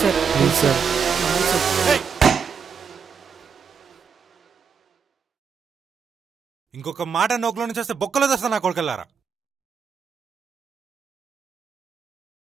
సార్ ప్లీజ్ సార్. ఇంకొక మాట నోకులో నుంచి వస్తే బొక్కలో తెస్తా నా కొడుకెళ్ళారా.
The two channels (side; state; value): left; quieter; 6.2 dB